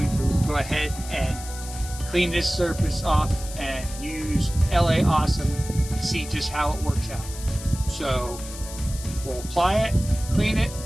to go ahead and clean this surface off and use LA Awesome to see just how it works out. So we'll apply it, clean it,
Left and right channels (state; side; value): noise; left; hiss, 13 dB below the sound